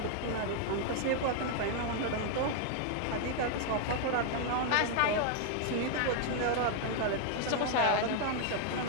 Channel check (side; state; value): both; different; correlation 0.00